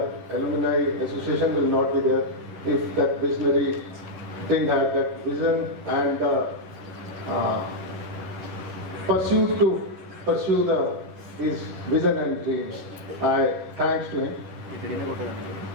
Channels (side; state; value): left; late; 11 ms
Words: alumni association will not be there if that visionary didn't have that vision and pursuit to pursue his vision and dreams. I thanks to him.